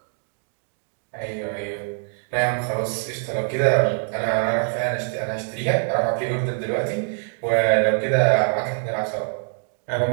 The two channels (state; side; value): silent; left; 58 dB below the other